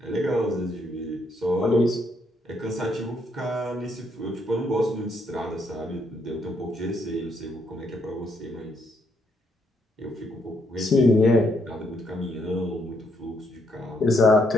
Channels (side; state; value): both; normal; correlation 0.74